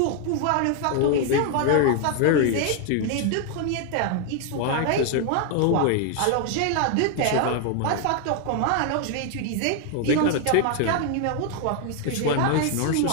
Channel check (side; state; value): both; different; correlation 0.00